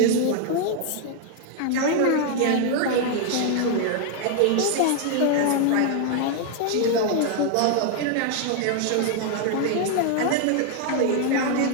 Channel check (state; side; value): different; both; correlation 0.00